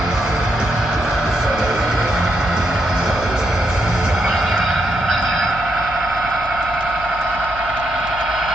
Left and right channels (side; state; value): left; noise; hum, 14 dB below the sound